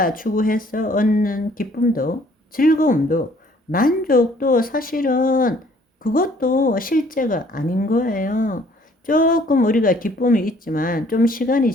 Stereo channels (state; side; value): normal; both; correlation 0.59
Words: 추구해서 얻는 기쁨도 즐거움도 만족도 사실은 그것도 실제가 아닌 거예요. 조금 우리가 기쁨이 있지만 좀 시간이